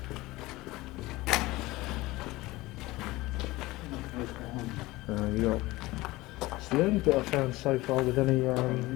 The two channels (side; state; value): right; quieter; 19.7 dB